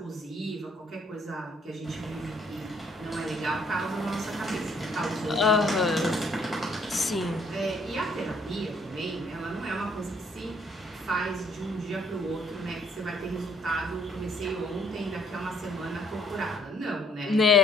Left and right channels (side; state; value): both; normal; correlation 0.65